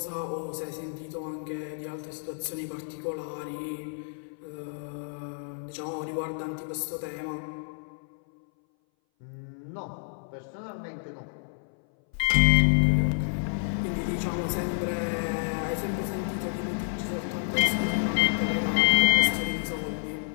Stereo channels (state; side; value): silent; right; 58 dB below the other